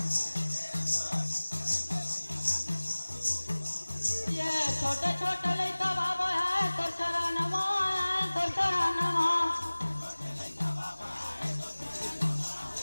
ये छोटे छोटे लइका बाबा है तो चरणवा है तो चरणवा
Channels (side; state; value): both; inverted; correlation -1.00